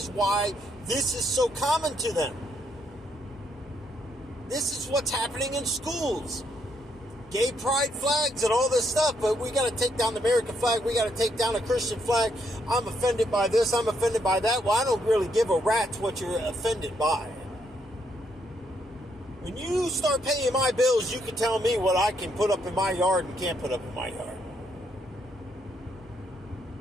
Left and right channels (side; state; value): both; normal; correlation 0.74